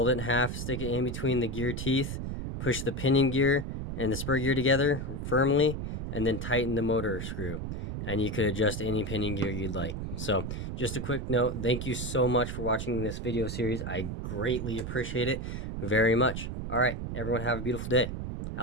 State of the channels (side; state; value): right; noise; rumble, 5 dB below the sound